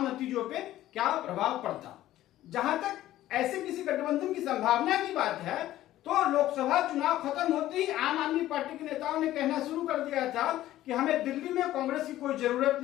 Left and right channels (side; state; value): right; quieter; 14.2 dB